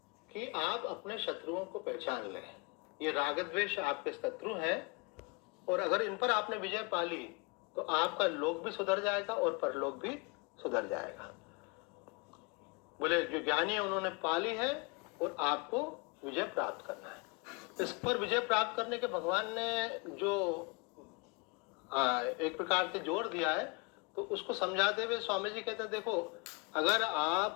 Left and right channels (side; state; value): right; quieter; 30.9 dB